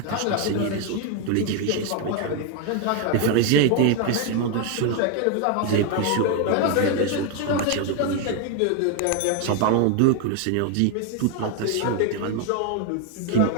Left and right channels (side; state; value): both; different; correlation 0.01